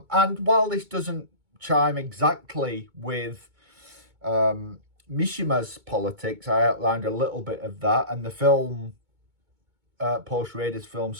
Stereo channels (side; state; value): left; late; 2.2 ms